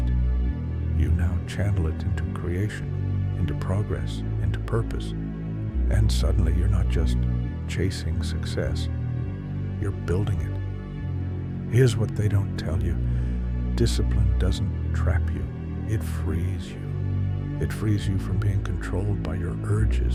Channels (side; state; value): both; identical; correlation 1.00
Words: you now channel it into creation, into progress, into purpose. And suddenly you're not just chasing success, you're building it. Here's what they don't tell you. Discipline doesn't trap you. It frees you. It frees you from being controlled by your